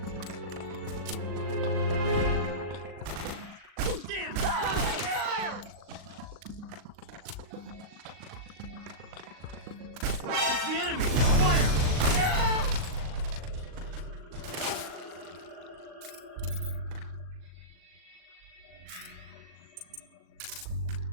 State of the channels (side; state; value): left; late; 39 ms